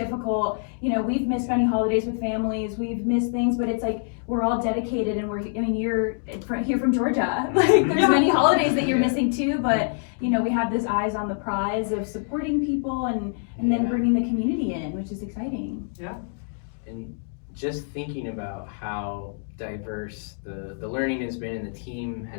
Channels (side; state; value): right; silent; 61 dB below the other